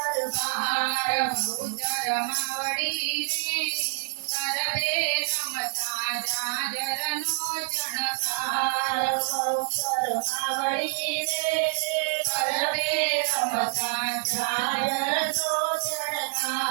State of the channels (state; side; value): silent; left; digital silence